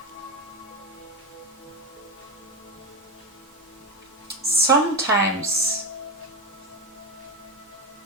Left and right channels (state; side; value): normal; both; correlation 0.15